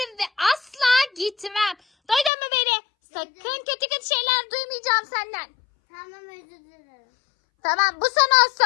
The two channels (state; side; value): drops out; right; at 2.3 s